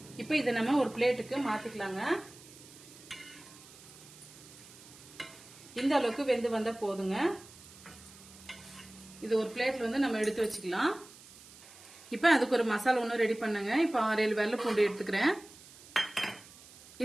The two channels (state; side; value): noise; right; hiss, 20 dB below the sound